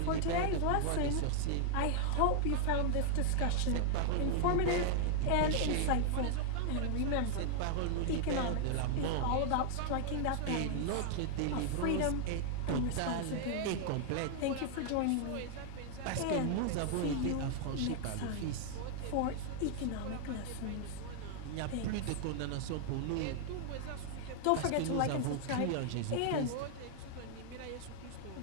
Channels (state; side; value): different; both; correlation 0.00